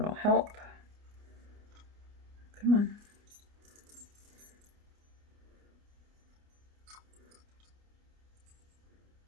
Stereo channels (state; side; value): late; left; 29 ms